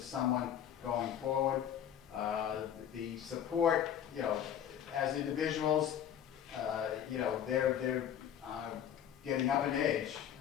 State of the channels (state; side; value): quieter; right; 9.6 dB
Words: going forward. The support, as individuals, they're getting up in age,